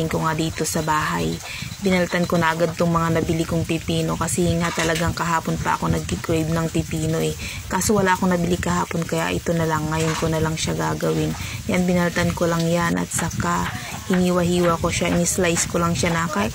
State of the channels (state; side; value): identical; both; correlation 1.00